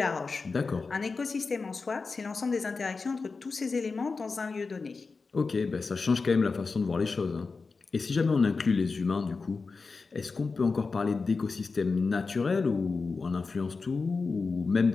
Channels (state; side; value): quieter; right; 4.3 dB